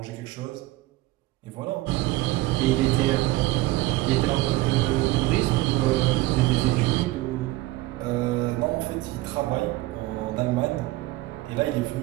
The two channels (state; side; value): quieter; left; 18.5 dB